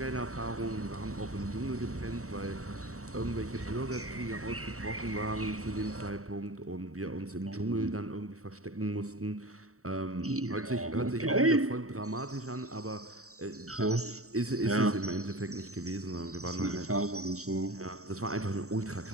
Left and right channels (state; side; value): late; left; 0.64 ms